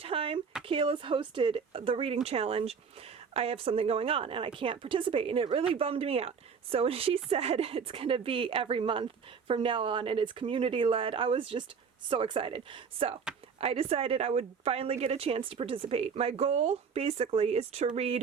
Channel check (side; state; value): left; quieter; 6.2 dB